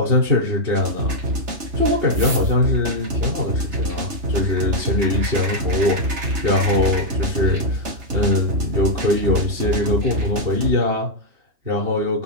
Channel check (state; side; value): late; left; 3.3 ms